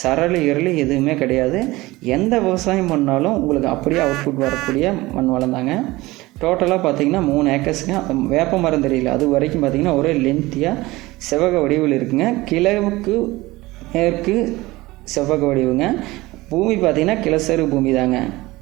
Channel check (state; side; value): quieter; left; 19.8 dB